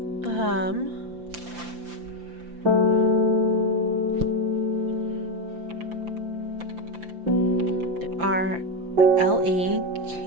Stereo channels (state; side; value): late; left; 5.8 ms